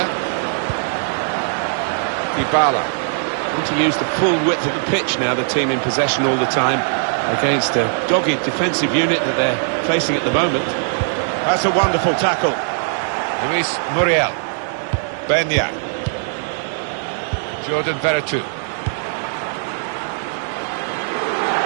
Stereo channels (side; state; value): left; silent; digital silence